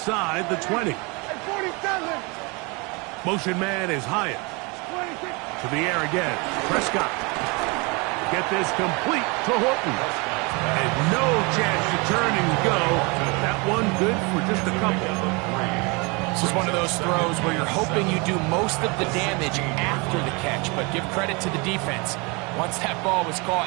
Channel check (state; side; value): quieter; left; 28.7 dB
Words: the 20. 47. Motion man is Hyatt. To the air again. Prescott. Get this complete to Horton. And no chance to turn and go. That one good for just a couple. This is one of those throws where you're hoping you do most of the damage after the catch, but give credit to the defense. Once that ball was caught,